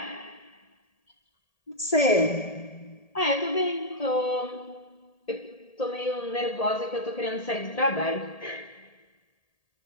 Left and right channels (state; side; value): late; right; 1.8 ms